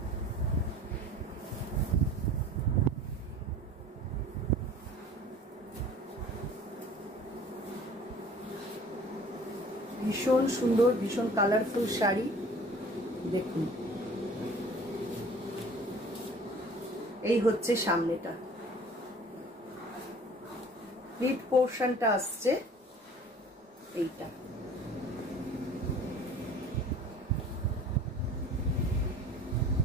ভীষণ সুন্দর, ভীষণ কালারফুল শাড়ি। দেখুন, এই হচ্ছে সামনেটা। প্লিট পোর্শনটা আসছে এইটা।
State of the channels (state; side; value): normal; both; correlation 0.47